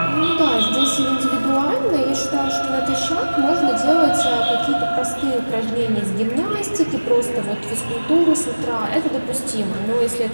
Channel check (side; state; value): both; inverted; correlation -1.00